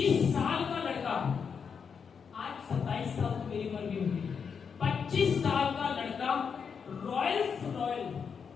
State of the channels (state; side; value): quieter; right; 6.4 dB